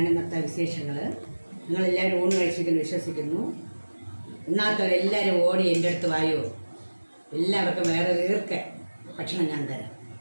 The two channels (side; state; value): both; inverted; correlation -1.00